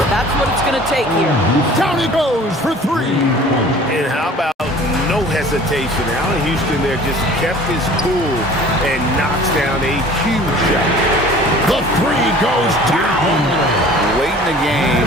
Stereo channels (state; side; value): normal; both; correlation 0.47